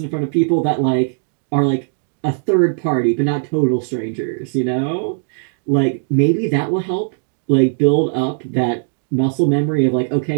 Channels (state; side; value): silent; left; digital silence